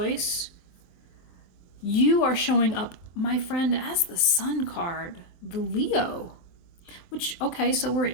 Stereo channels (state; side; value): late; right; 23 ms